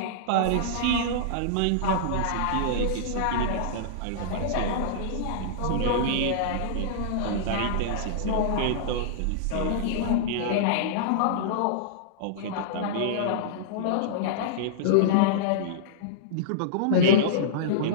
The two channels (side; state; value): both; different; correlation -0.03